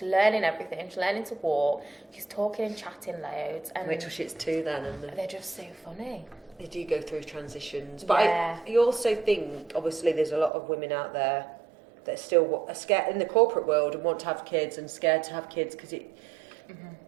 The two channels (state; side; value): drops out; left; at 10.5 s